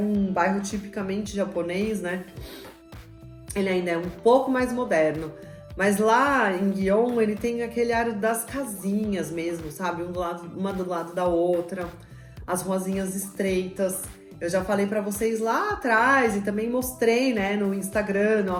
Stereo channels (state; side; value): identical; both; correlation 1.00